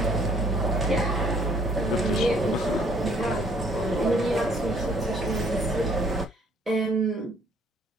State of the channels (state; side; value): normal; both; correlation 0.62